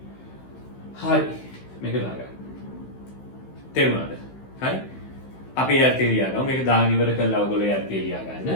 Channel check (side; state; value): right; late; 15 ms